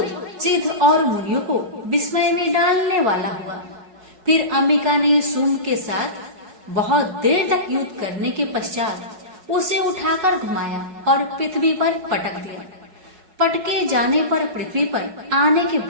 सिद्ध और मुनियों को विस्मय में डालने वाला हुआ। फिर अंबिका ने शुंभ के साथ बहुत देर तक युद्ध करने के पश्चात उसे उठाकर घुमाया और पृथ्वी पर पटक दिया। पटके जाने पर पृथ्वी पर आने के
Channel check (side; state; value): left; late; 4.7 ms